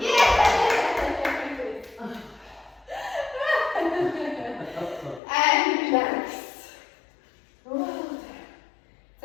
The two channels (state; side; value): drops out; right; at 5.2 s